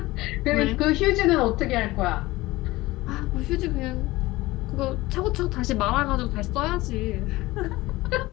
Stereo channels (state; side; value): quieter; right; 19.3 dB